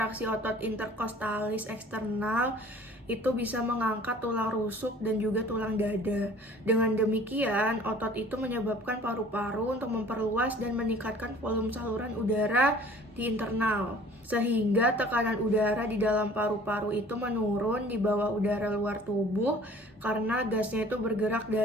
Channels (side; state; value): both; normal; correlation 0.50